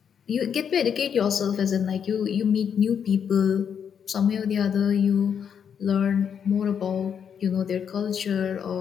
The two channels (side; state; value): right; quieter; 7.7 dB